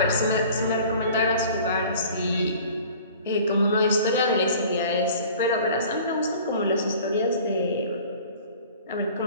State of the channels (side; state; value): both; inverted; correlation -0.46